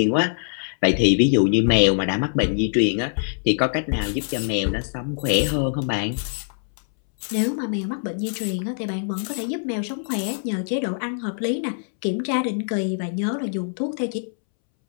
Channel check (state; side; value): silent; right; 63 dB below the other